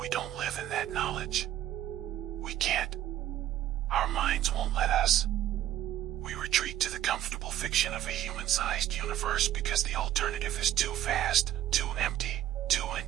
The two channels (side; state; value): left; quieter; 12.4 dB